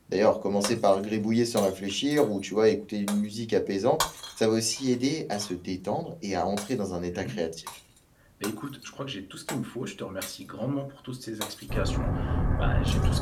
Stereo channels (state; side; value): identical; both; correlation 1.00